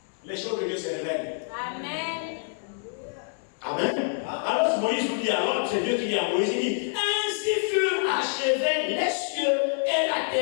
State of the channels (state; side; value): silent; right; 60 dB below the other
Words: Les choses de Dieu se révèlent. Amen. Amen. Alors Moïse vous dit, alors c'est Dieu qui dit à Moïse, il dit, ainsi furent achevés les cieux et la